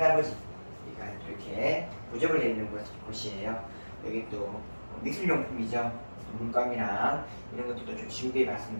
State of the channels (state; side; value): inverted; both; correlation -1.00